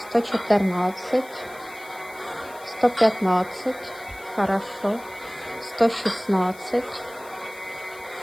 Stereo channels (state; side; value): noise; left; hiss, 22 dB below the sound